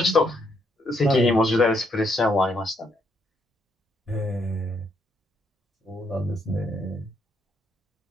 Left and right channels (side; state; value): both; normal; correlation 0.74